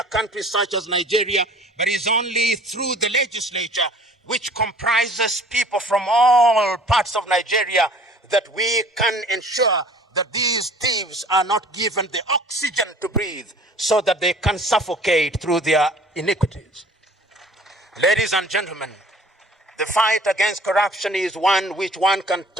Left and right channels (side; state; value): both; normal; correlation 0.50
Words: country such as Nigeria, but is only through the legislature, which comprises people from all parts of Nigeria, that we can ensure that these thieves are not given the oxygen to breathe so that they can suffocate through their iniquities. Ladies and gentlemen, the fight against corruption is one which one can